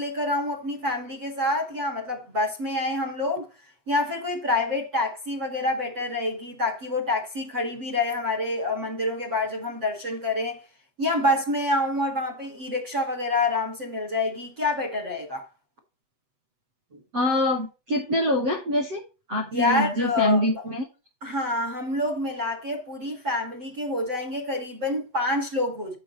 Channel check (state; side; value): late; left; 8.0 ms